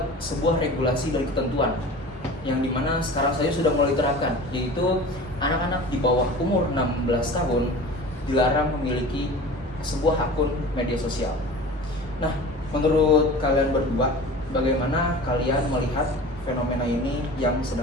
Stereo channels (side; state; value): both; normal; correlation 0.38